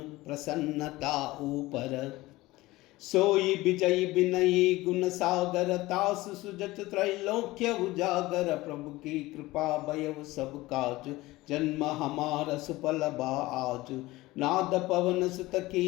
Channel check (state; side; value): quieter; right; 19.1 dB